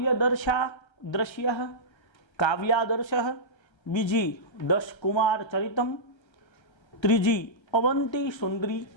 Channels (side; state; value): right; late; 1.3 ms